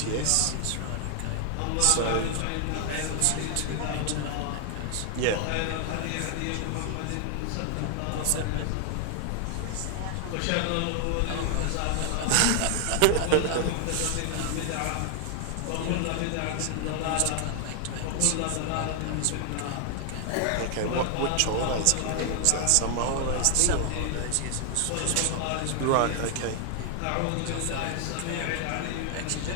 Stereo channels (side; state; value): both; different; correlation 0.00